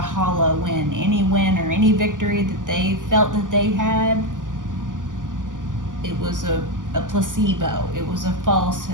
hollow win. Any win or any victory that they felt that they had, it was a placebo. It was a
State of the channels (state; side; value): late; left; 0.88 ms